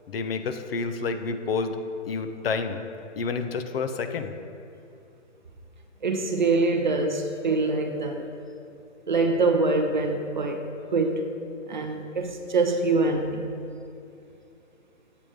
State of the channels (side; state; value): both; normal; correlation 0.21